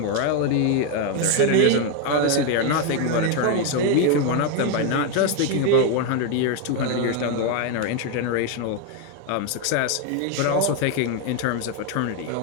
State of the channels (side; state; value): both; different; correlation 0.01